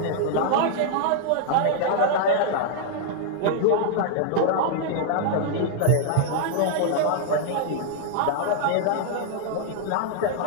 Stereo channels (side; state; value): both; different; correlation -0.01